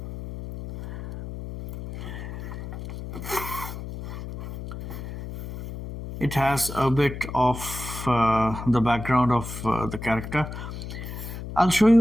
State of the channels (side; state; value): left; noise; hum, 9 dB below the sound